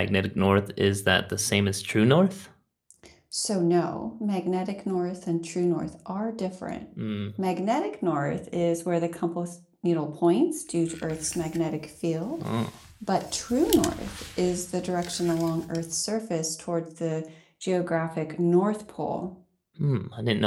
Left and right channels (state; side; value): identical; both; correlation 1.00